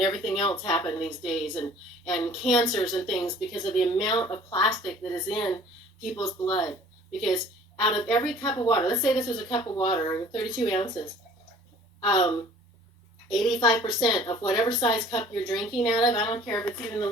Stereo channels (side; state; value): both; normal; correlation 0.51